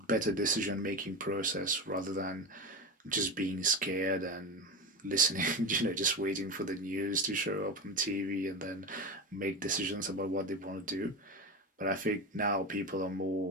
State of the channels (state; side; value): normal; both; correlation 0.22